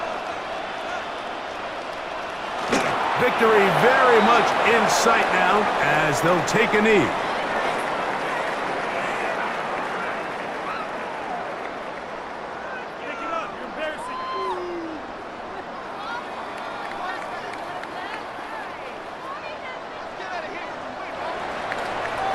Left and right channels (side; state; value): both; identical; correlation 1.00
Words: Victory very much in sight now as they'll take a knee.